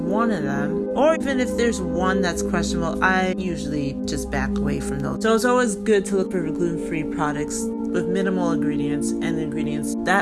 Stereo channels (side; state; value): both; identical; correlation 1.00